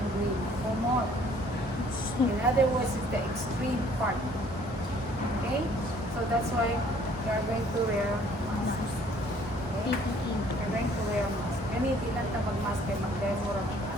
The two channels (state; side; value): normal; both; correlation 0.58